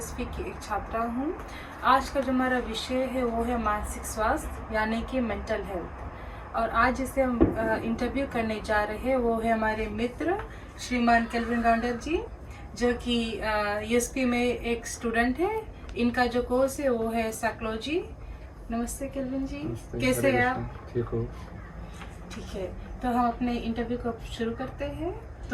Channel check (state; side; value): identical; both; correlation 1.00